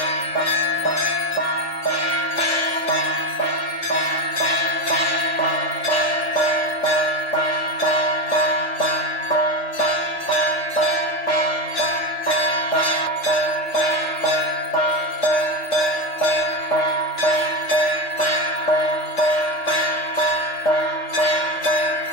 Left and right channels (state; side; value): late; right; 3.4 ms